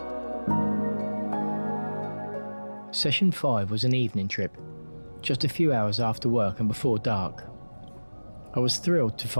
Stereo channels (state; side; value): inverted; both; correlation -1.00